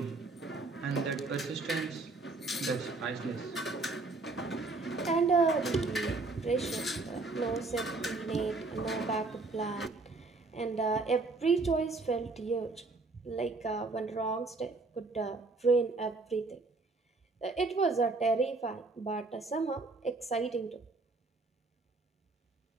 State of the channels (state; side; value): quieter; left; 3.6 dB